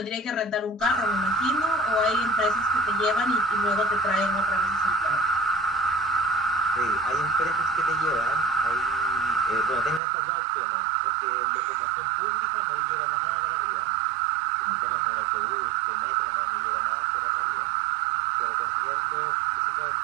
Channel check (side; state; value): left; drops out; at 10.0 s